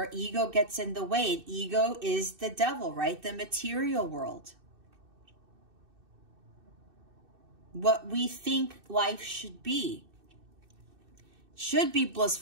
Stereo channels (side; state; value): left; late; 2.6 ms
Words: ego gets in the way. And ego is the devil, right? The material world. What we think life should be. Should be